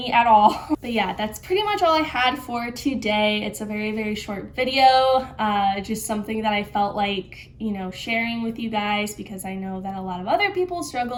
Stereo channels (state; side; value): identical; both; correlation 1.00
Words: at all. But yeah, that's pretty much all I had for today. It's a very, very short video, just something that I felt like, sharing with you guys, because I know that a lot of other people